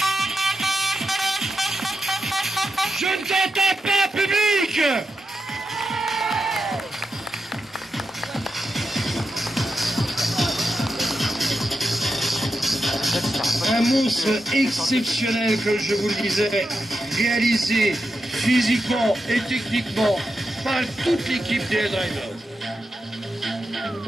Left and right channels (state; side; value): normal; both; correlation 0.88